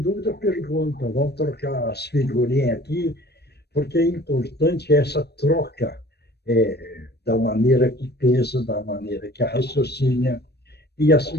dúvida, pergunta. Vamos trocar as figurinhas aqui, porque é importante essa troca da maneira que pensa, da maneira que raciocina, e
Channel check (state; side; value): late; right; 0.48 ms